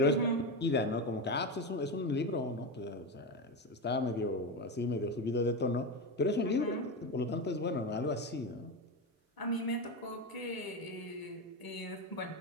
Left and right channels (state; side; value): normal; both; correlation 0.16